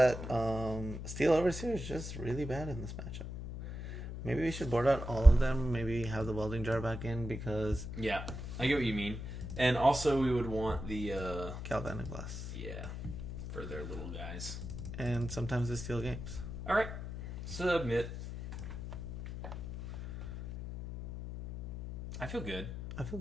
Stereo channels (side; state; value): left; noise; hum, 7 dB below the sound